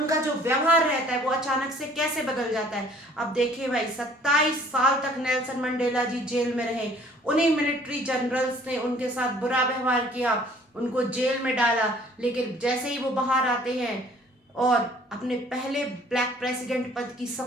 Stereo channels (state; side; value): normal; both; correlation 0.55